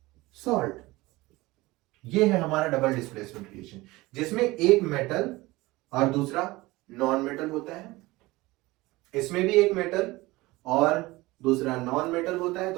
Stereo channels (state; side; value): quieter; left; 20.4 dB